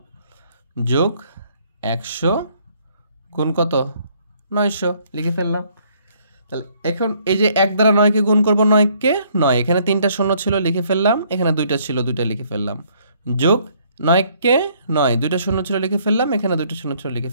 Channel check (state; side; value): inverted; both; correlation -0.65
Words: যোগ 100 গুণ কত? 900, লিখে ফেললাম। তাহলে এখন এই যে 1 দ্বারা 9কে গুণ করবো, 9কে 9, এখানে 3টা শূন্য ছিল, লিখে ফেললাম। এখানে 2টা ছিল, 2টা লিখে ফেললাম। যোগ 9কে 9, 2টা শূন্য ছিল, লিখে ফেললাম। এখানে 2টা শূন্য ছিল, লিখে